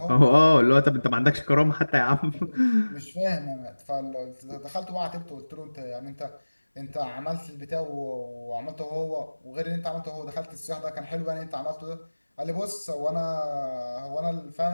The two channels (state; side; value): inverted; both; correlation -1.00